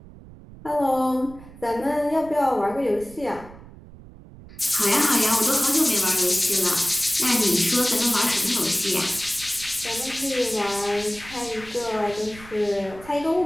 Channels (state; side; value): noise; right; rumble, 19 dB below the sound